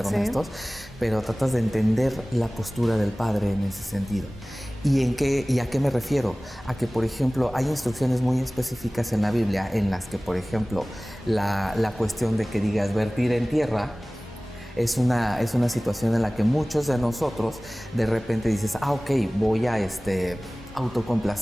honestos, pero tratas de entender la postura del Padre en ese sentido. ¿Y a qué me refiero? A que, por ejemplo, hay instrucciones muy específicas en la Biblia en las que, por ejemplo, la cuestión de que digas vertir en tierra es una situación en la que muchos de nosotros de repente dices, ok, voy a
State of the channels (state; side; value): normal; both; correlation 0.98